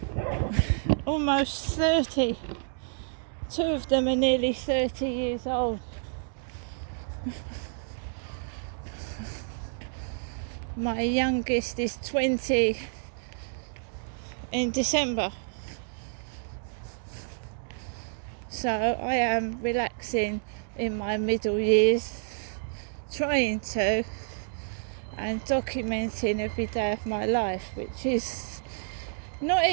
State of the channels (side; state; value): left; silent; digital silence